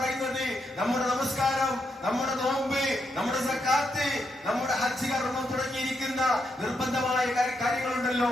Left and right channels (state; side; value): normal; both; correlation 0.81